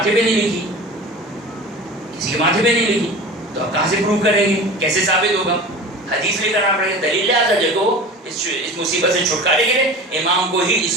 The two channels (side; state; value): both; normal; correlation 0.35